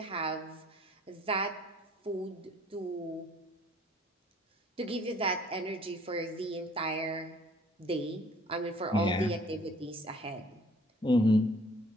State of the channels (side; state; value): both; normal; correlation 0.55